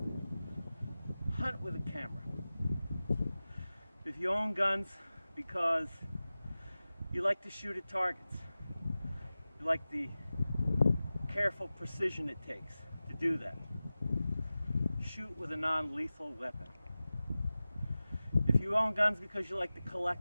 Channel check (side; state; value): both; inverted; correlation -0.96